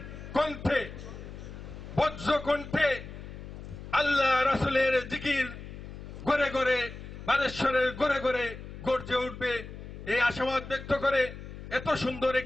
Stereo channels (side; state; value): left; noise; hum, 12 dB below the sound